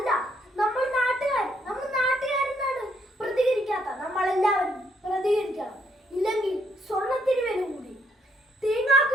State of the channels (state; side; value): normal; both; correlation 0.71